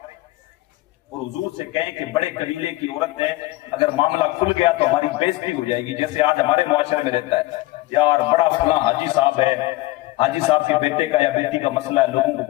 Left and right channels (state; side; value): quieter; right; 18.9 dB